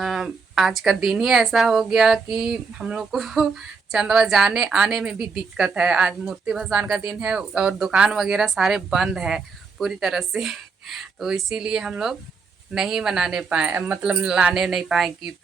आज का दिन ही ऐसा हो गया कि हम लोग को चंदवा जाने आने में भी दिक्कत है। आज मूर्ति भसान का दिन है और दुकान वगैरह सारे बंद है पूरी तरह से। तो इसीलिए हम लोग नहीं मनाने पाए, मतलब लाने नहीं पाए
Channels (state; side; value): quieter; left; 4.9 dB